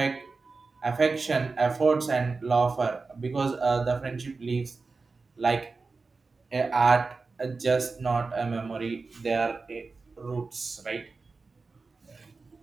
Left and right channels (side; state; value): left; quieter; 4.1 dB